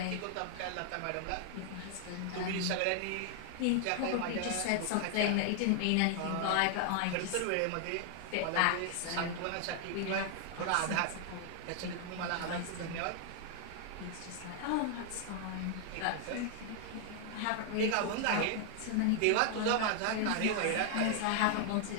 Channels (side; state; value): both; different; correlation 0.00